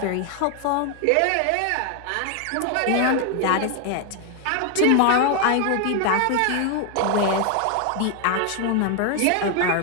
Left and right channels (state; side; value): different; both; correlation 0.01